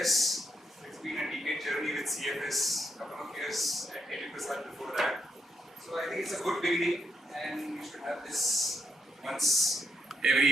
It's been a decade journey with CFS, a couple of years at 80% before that. So I think it's a good beginning, and we should have this once every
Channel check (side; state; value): both; normal; correlation 0.80